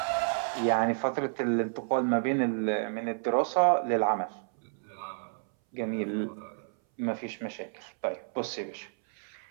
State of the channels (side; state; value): left; silent; 58 dB below the other